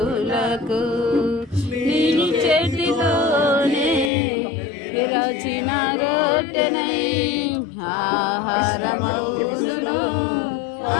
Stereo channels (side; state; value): right; drops out; at 4.1 s